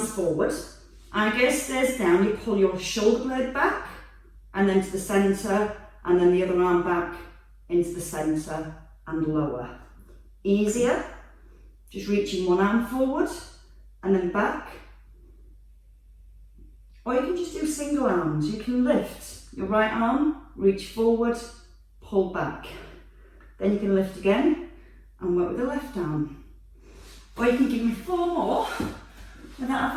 forward, and gaze stays down, you pull your shoulder blade back and then to the centre and then the other arm back into the centre and lower. Easier, just reaching one arm forward and then back. Or you can just do single arms. You can lift your right arm, reach forward, pull back. Then you can lift again and work with the left arm. Or you can give me 4 more with that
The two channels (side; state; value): both; identical; correlation 1.00